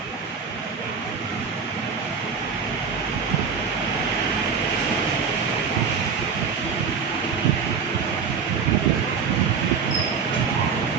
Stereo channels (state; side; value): quieter; left; 6.0 dB